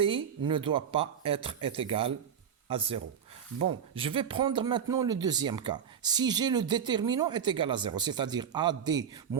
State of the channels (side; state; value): left; quieter; 7.9 dB